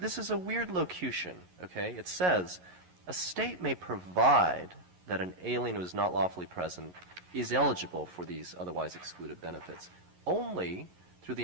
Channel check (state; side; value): late; left; 11 ms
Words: this is a weird locution, okay? It says, a state may provide that an alien who is not lawfully present is eligible for these otherwise excluded benefits only through the